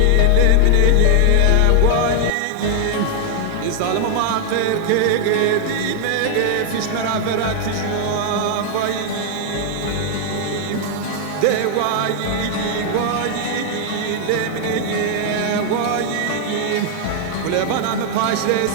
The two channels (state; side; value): different; both; correlation 0.00